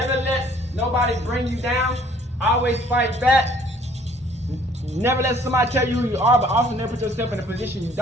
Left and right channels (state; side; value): normal; both; correlation 0.58